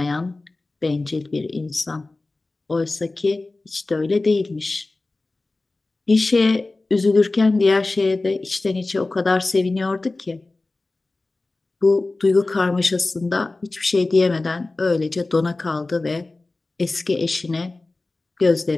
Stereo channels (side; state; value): right; quieter; 3.2 dB